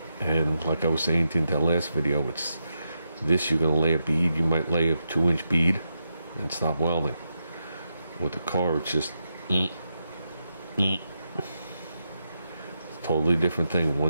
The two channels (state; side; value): inverted; both; correlation -0.85